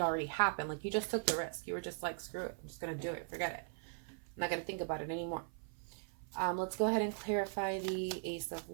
already happened. Like you just took the risk. You were just like, screw it, I'm just going to do it. Forget it. I'm not going to think about it anymore. Let's go ahead and clarify the Ace of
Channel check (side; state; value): left; silent; 51 dB below the other